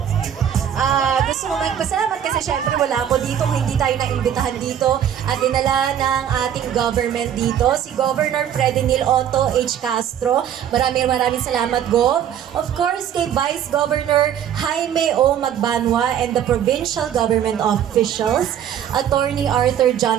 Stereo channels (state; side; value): quieter; left; 9.7 dB